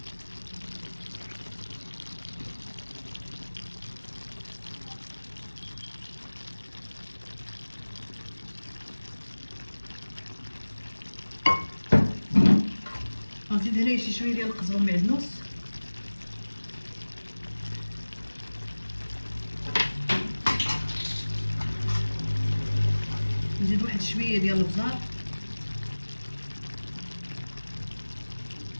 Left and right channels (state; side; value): inverted; both; correlation -1.00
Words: غنزيد هنايا شي شويه ديال القزبر معدنوس، نزيد واحد شويه ديال البزار،